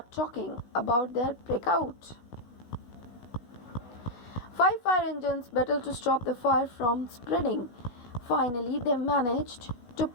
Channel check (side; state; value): right; late; 16 ms